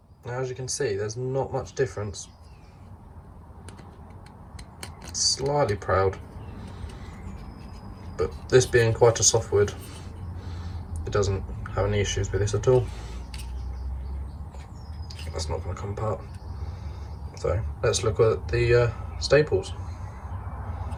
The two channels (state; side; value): identical; both; correlation 1.00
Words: now as you can see, there's not much difference. It's slightly proud, but this being quite a soft wood, it doesn't have any issues with this at all. That's not going to come apart. So let's look at the staples.